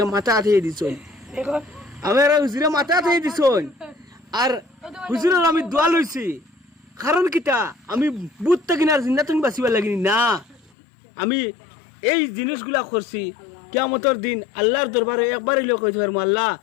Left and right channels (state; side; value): drops out; right; at 10.7 s